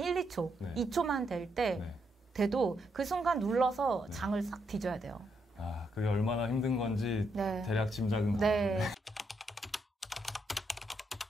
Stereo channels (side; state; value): both; normal; correlation 0.78